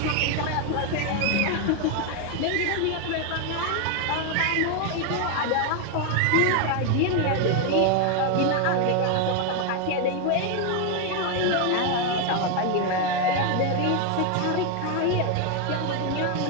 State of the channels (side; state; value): both; different; correlation 0.01